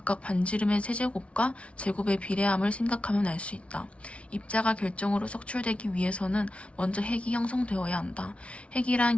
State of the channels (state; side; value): late; right; 0.062 ms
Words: 반지름의 세제곱과 제곱의 비례함을 생각하면 알 수 있다. 입자가 결정으로 석출되기 위해서는 먼저 핵이 형성되어야 한다.